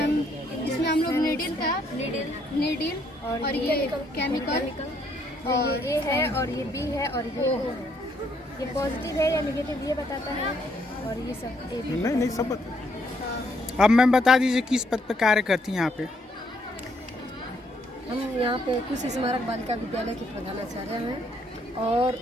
इसमें हम लोग नीडल और ये केमिकल और ये है और ये बी है और ये पॉजिटिव है या नेगेटिव ये बताता है और ये सब नहीं सब बता। अब मैम बता दीजिए किस पद पे कार्य करती हैं यहाँ पे? हम यहाँ पे कुश स्मारक बालिका विद्यालय की प्रधानाचार्य हैं और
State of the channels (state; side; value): normal; both; correlation 0.71